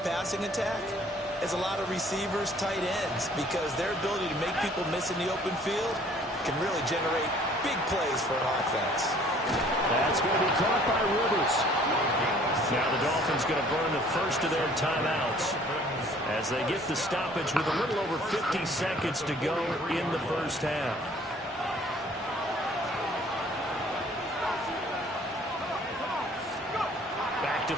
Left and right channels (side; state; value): both; normal; correlation 0.56